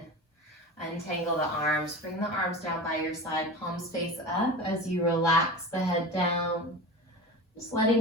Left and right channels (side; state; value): both; normal; correlation 0.31